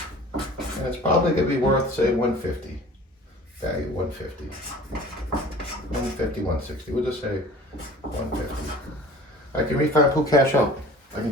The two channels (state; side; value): normal; both; correlation 0.45